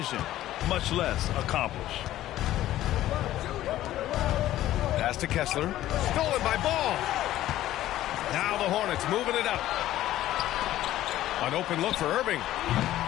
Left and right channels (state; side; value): quieter; right; 14.0 dB